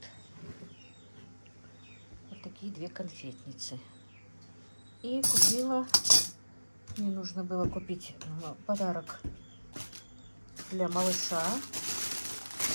Вот такие 2 конфетницы. И купила, мне нужно было купить подарок для малыша.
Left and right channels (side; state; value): both; inverted; correlation -1.00